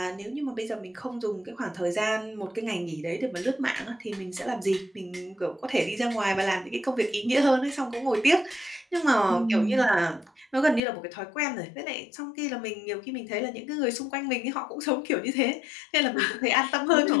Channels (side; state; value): right; drops out; at 10.8 s